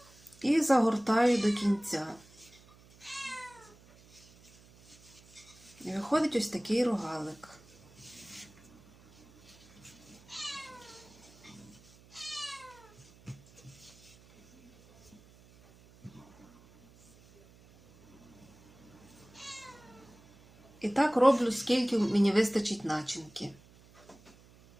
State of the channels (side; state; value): right; noise; hum, 26 dB below the sound